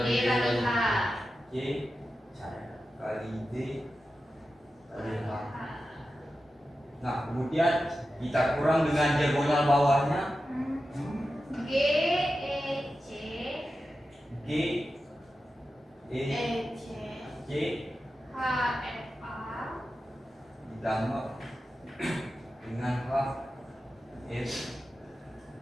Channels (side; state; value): both; normal; correlation 0.92